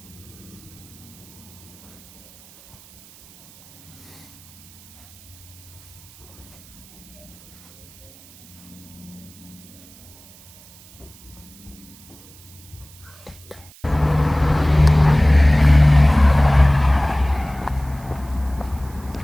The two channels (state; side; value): noise; right; hiss, 23 dB below the sound